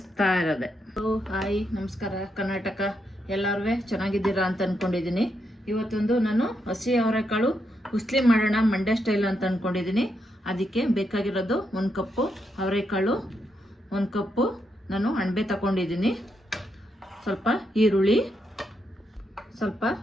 ಇರೋದೆ. ಹಾಯ್, ನಮಸ್ಕಾರ ಕರ್ನಾಟಕ. ಎಲ್ಲರೂ ಚೆನ್ನಾಗಿದ್ದೀರಾ ಅಂತ ಅಂದ್ಕೊಂಡಿದ್ದೀನಿ. ಇವತ್ತೊಂದು ನಾನು ಹಸಿ ಅವರೆಕಾಳು ಉಸ್ಲಿ ಮಾಡೋಣ ಮಂಡ್ಯ ಸ್ಟೈಲ್ ಅಂತ ಅಂದ್ಕೊಂಡಿದ್ದೀನಿ. ಅದಕ್ಕೆ ಬೇಕಾಗಿರೋದು 1 ಕಪ್ಪು ಅವರೆಕಾಳು, 1 ಕಪ್ಪು ನಾನು ಅಣಬೆ ತಗೊಂಡಿದ್ದೀನಿ, ಸ್ವಲ್ಪ ಈರುಳ್ಳಿ, ಸ್ವಲ್ಪ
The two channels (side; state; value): both; normal; correlation 0.81